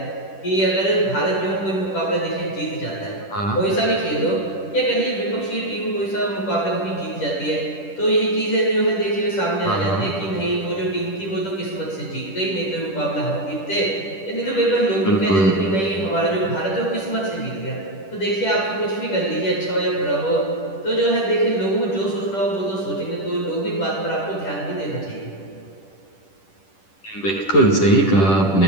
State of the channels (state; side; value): late; right; 10 ms